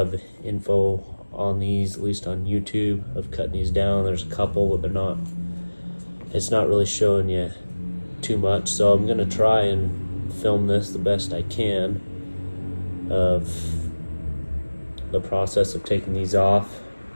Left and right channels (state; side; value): inverted; both; correlation -1.00